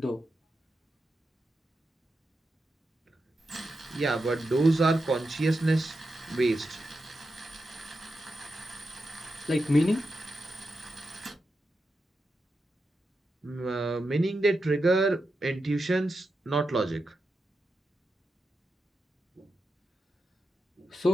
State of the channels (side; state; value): both; normal; correlation 0.88